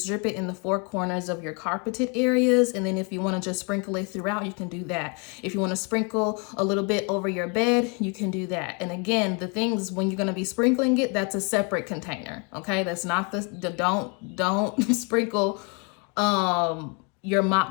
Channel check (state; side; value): quieter; right; 34.3 dB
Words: drip it in the four corners of your carpeted areas. And then if you want to just sprinkle it throughout, you can do that. If you want to sprinkle a little bit over your bed, you can do that. And again, the things when you're going to be sprinkling it, that's a separate container. Okay. That's not don't sprinkle, your